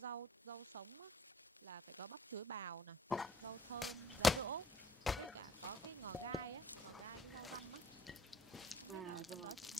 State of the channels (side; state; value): both; normal; correlation 0.59